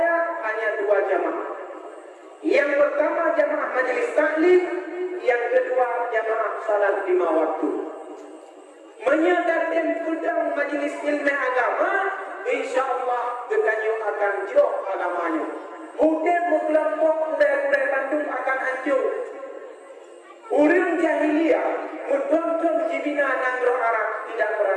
hanya dua jamaah. Yang pertama jamaah majelis taklim, yang kedua jamaah salat 5 waktu. Menyadarkan kudang majelis ilmu agama, insyaallah geganyo akan jauh agamanya. Mungkin kelompok budaya Bandung akan hancur. Orang jahiliyah menonton jibina nangro Arab tidak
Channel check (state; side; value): identical; both; correlation 1.00